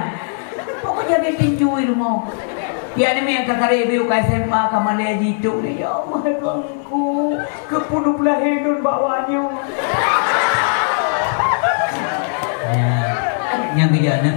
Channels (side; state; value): right; silent; digital silence